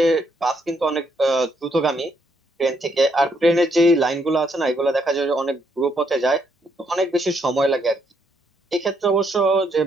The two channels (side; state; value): both; normal; correlation 0.74